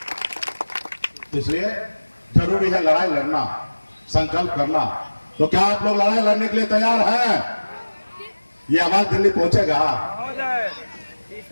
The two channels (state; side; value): inverted; both; correlation -1.00